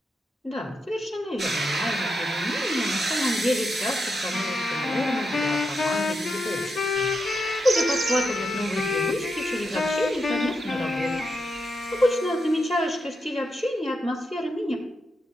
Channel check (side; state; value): both; normal; correlation 0.85